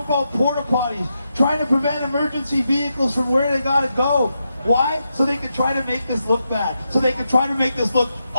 out porta potties, trying to prevent emergency vehicles from where they gotta go. Why? So they can try to make this look bad. So they can try to make this look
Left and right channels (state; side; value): inverted; both; correlation -0.85